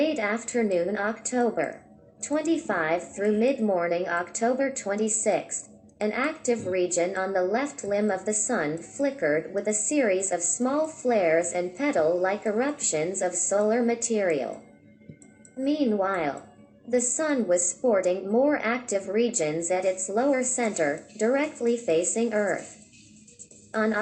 afternoon October 25 through mid-morning October 26, an active region on the left limb of the Sun flickered with a series of small flares and petal-like eruptions of solar material. Meanwhile, the Sun was sporting more active regions at its lower center, directly facing Earth. On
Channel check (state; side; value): identical; both; correlation 1.00